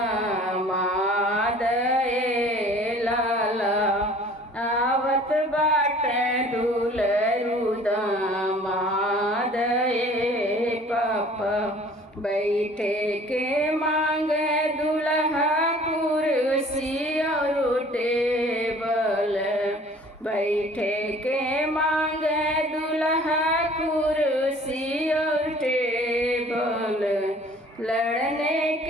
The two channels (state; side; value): normal; both; correlation 0.51